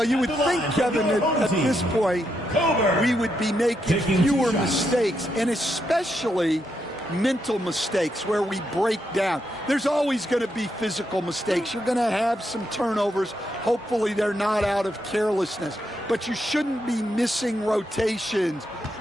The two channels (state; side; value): normal; both; correlation 0.81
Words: you would think, Kevin, that at this point, we would be making fewer mistakes, and especially mental mistakes where we break down. There's always going to be physical mistakes. You're going to have some turnovers. Hopefully they're not out of carelessness. But you shouldn't be missing rotations